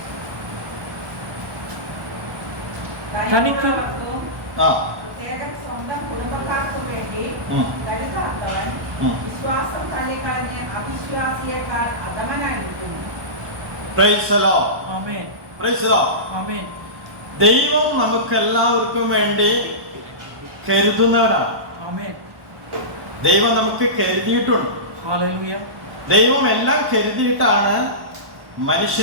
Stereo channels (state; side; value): late; left; 1.1 ms